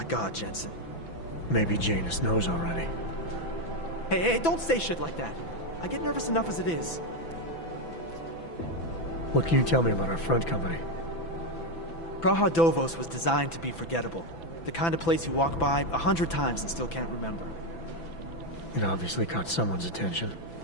God, Jensen. Maybe Janus knows already. Hey, don't say shit like that. I get nervous enough as it is. What can you tell me about our front company? Praha Dovos was designed to be forgettable. The kind of place you walk by 100 times and still can't remember. It obviously caught someone's attention.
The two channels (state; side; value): late; right; 6.0 ms